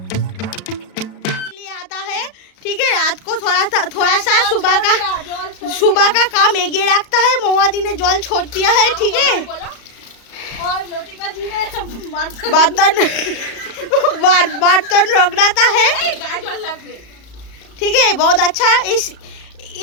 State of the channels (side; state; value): right; late; 34 ms